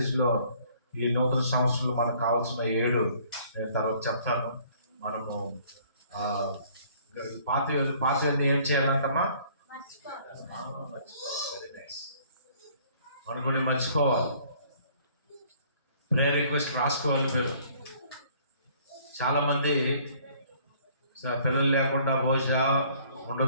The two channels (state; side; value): inverted; both; correlation -0.58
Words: ఈ నూతన సంవత్సరంలో మనకు కావాల్సిన 7 నేను తర్వాత చెప్తాను. మనము పాతవన్నీ ఏం చేయాలంటమ్మా? Very nice. మనకు మర్చిపోవాలి. ప్రేయర్ రిక్వెస్ట్ రాసుకోవాలి. చాలామంది పిల్లలు లేకుండా బహుశా